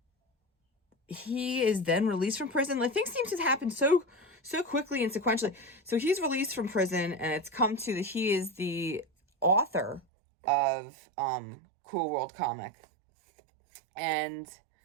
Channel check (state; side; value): drops out; left; at 10.0 s